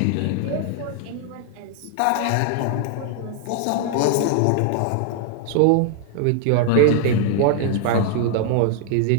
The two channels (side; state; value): both; different; correlation 0.00